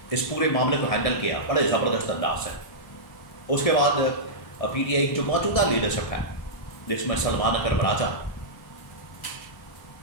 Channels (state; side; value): late; right; 1.7 ms